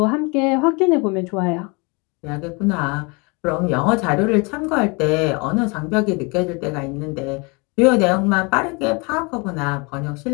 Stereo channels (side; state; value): right; quieter; 29.6 dB